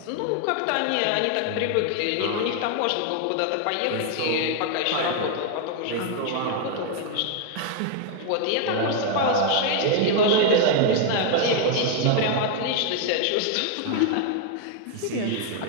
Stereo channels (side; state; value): both; different; correlation 0.00